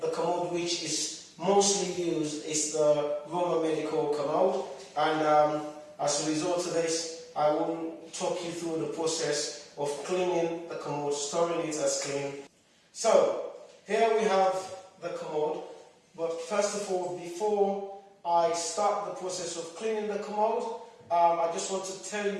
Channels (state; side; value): identical; both; correlation 1.00